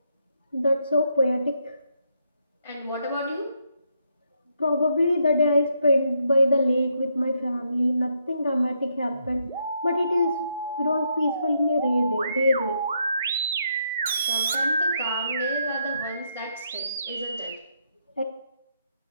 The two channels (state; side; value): inverted; both; correlation -0.76